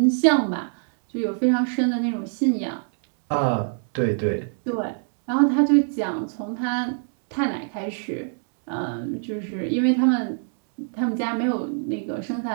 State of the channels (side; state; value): left; silent; digital silence